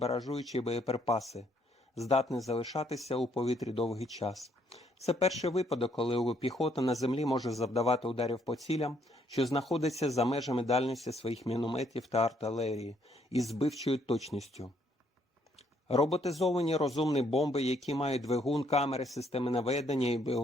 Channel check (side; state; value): both; normal; correlation 0.69